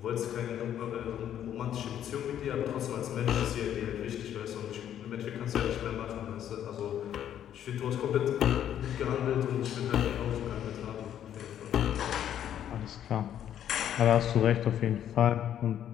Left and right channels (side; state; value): right; quieter; 10.4 dB